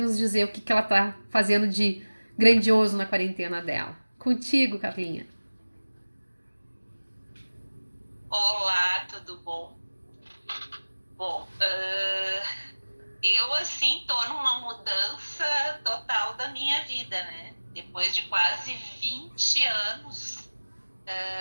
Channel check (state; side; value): inverted; both; correlation -1.00